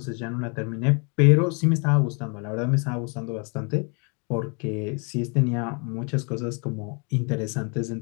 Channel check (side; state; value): right; quieter; 35.4 dB